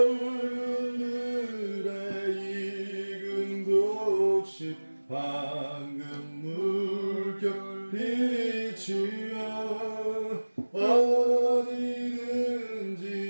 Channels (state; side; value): inverted; both; correlation -1.00